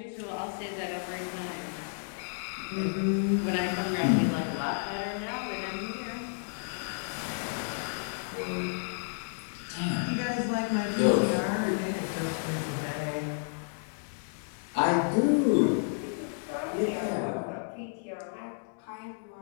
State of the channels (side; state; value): right; silent; digital silence